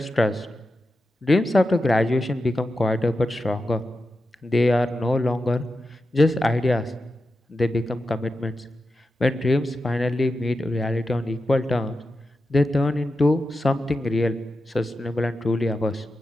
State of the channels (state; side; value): normal; both; correlation 0.90